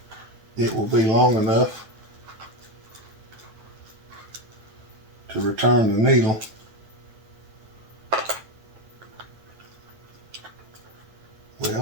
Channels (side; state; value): left; late; 9.1 ms